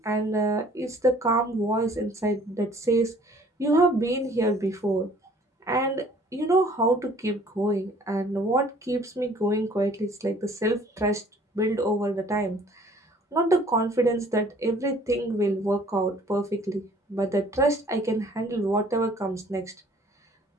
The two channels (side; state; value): both; normal; correlation 0.55